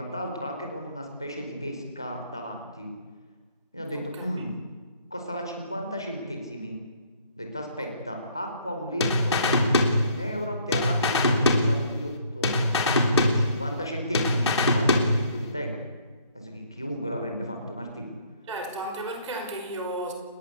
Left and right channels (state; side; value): inverted; both; correlation -0.61